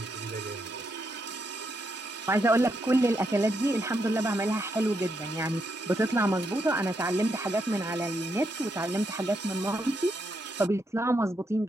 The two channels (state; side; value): normal; both; correlation 0.80